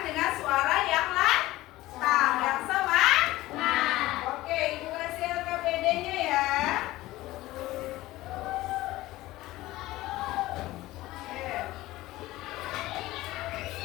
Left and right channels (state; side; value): quieter; right; 17.5 dB